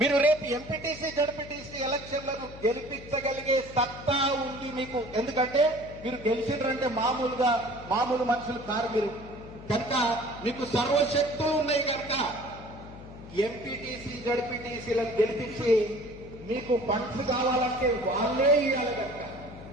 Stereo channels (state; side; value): noise; left; hum, 15 dB below the sound